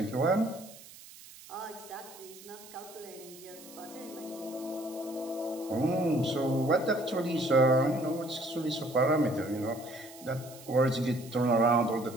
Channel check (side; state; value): right; noise; hiss, 19 dB below the sound